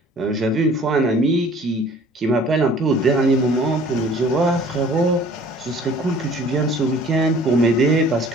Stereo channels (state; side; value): normal; both; correlation 0.51